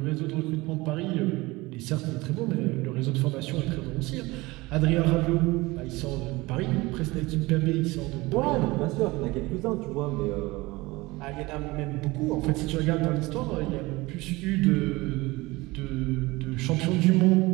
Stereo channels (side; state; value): left; quieter; 21.6 dB